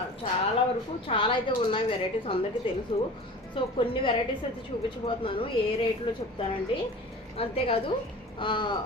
చాలా అయితే ఉన్నాయి వెరైటీస్, అందరికీ తెలుసు. సో కొన్ని వెరైటీస్ అయితే చూపించబోతున్నాను, ఏ రేట్లో చెప్తానండి. అంతేకాదు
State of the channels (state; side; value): normal; both; correlation 0.39